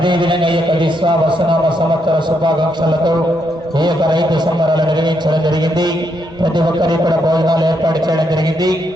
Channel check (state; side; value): normal; both; correlation 0.78